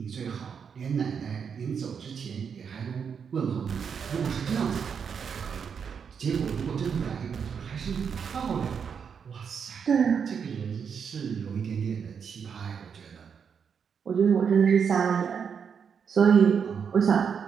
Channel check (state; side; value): quieter; left; 6.8 dB